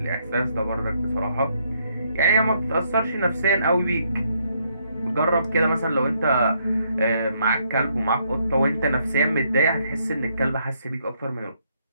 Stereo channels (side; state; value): both; inverted; correlation -0.72